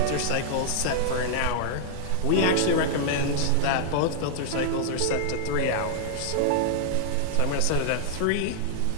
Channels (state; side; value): different; both; correlation -0.01